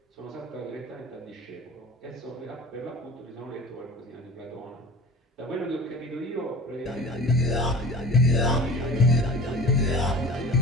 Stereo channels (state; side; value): normal; both; correlation 0.39